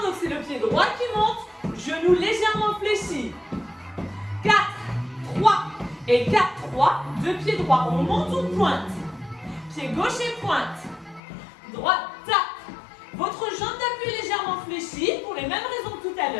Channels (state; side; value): drops out; right; at 11.2 s